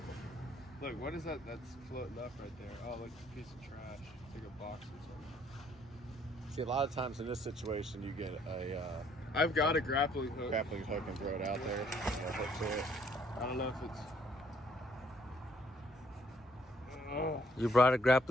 Look, what is that that's floating up right there? Oh, look, it's a piece of trash. It's like a box or something. See, a lot of times in this situation, you get a I've got a grappling hook. grappling hook and throw it out there. Hook to it. I don't know if it's... Oh. You brought a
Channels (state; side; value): normal; both; correlation 0.65